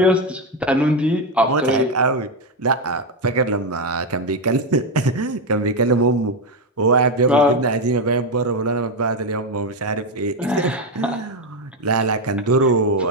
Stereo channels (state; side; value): normal; both; correlation 0.09